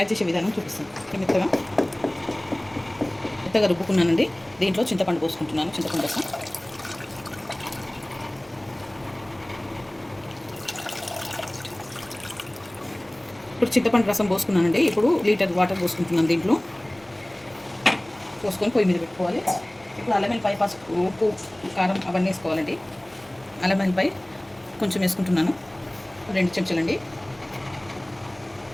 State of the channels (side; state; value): left; noise; hum, 29 dB below the sound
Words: చేసే విధానం చూపిస్తాను. మెత్తగా రుబ్బుకున్నానండి. దీంట్లో చింతపండు పోసుకుంటున్నాను. చింతపండు రసం ఇప్పుడు చింతపండు రసం పోసుకున్నానండి. ఇప్పుడు లీటర్ వాటర్ పోసుకుంటున్నాను. దీంట్లో పోసుకొని పొయ్యి మీద పెట్టుకోవాలి. ఇప్పుడు అల్లం వెల్లిపాయ, పసుపు, ఉప్పు, కారం అవన్నీ వేసుకోవాలండి. అల్లం వెల్లిపాయ కొంచెం వేసుకుంటున్నాను. 2 చెంచాలండి.